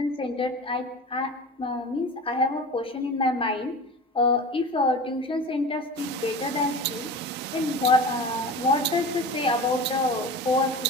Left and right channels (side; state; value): both; normal; correlation 0.34